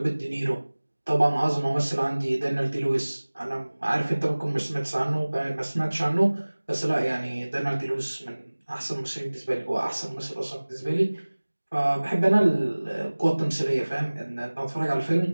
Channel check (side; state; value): both; inverted; correlation -1.00